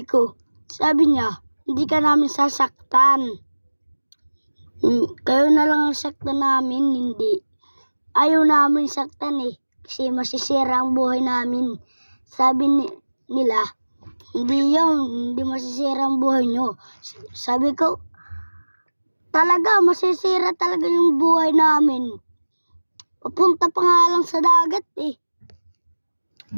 niya, hindi ka namin sasaktan. Kayo na lang ang saktan namin, hindi. Ayaw namin saktan eh, kasi masisira ang buhay namin. Sabi nila, hindi yun, hindi masisira ang buhay nyo. Sabi ko, talaga, masisira talaga yung buhay namin. Papunta pa nga lang sa dagat eh.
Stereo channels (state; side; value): inverted; both; correlation -1.00